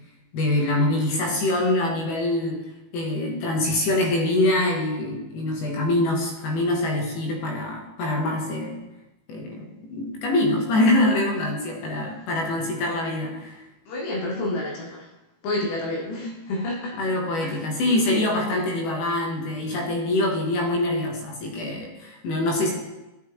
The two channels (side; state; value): right; late; 18 ms